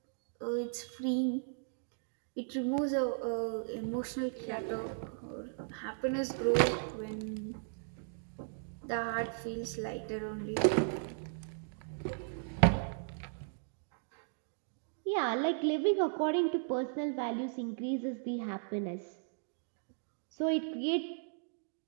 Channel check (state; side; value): silent; left; digital silence